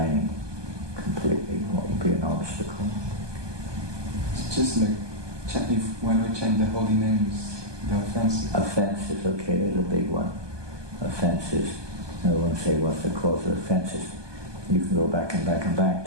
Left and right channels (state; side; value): late; left; 1.2 ms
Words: completely? What would be an obstacle? It's just like when we chant the holy names, the offenses. Offenses, okay, there's a big one. Offenses. I won't say what's the cause of offenses. You can go back and back and back